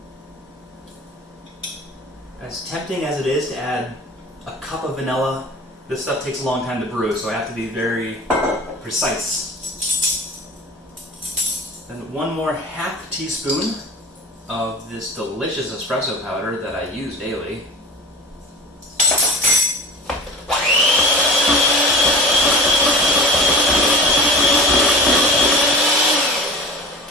As tempting as it is to add a cup of vanilla, this stuff takes a long time to brew, so I have to be very precise. Then 1 more half teaspoon of this delicious espresso powder that I use daily.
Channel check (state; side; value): normal; both; correlation 0.37